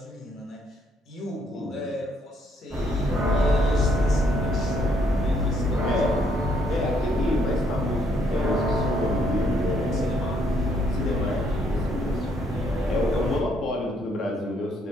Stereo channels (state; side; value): normal; both; correlation 0.70